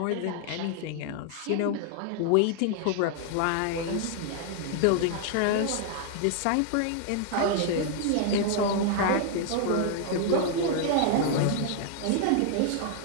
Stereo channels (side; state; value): both; different; correlation 0.00